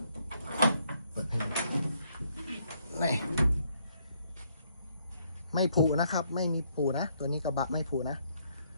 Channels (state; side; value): inverted; both; correlation -0.70